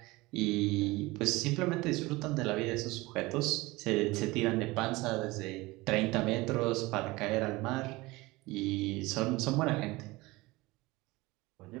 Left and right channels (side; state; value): left; quieter; 21.5 dB